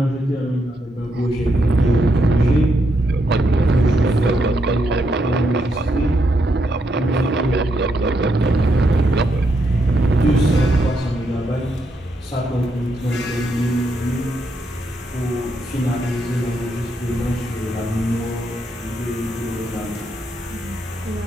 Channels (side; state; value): both; normal; correlation 0.79